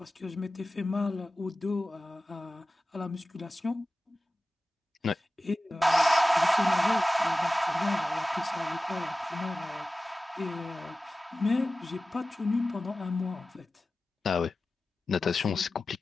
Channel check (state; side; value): normal; both; correlation 0.95